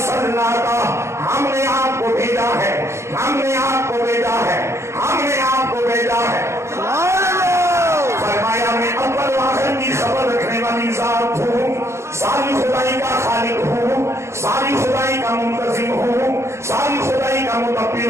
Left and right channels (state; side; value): late; left; 0.13 ms